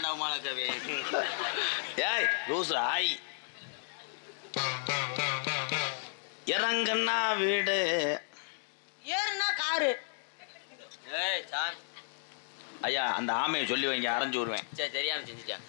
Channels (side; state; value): right; silent; digital silence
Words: மாலை கவி. ஏய் லூசு ஆய். இறங்குன்னா வீடு, ஏறுனா காரு. ஏய் சாமி ஐயா அந்த ஆமையை சொல்லி வைங்க, அரைஞ்சு விடுவேன். சரி தெரியாம செஞ்சுட்டேன்.